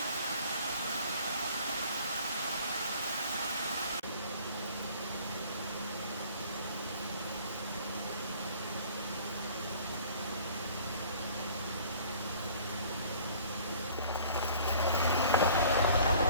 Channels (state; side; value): inverted; both; correlation -0.51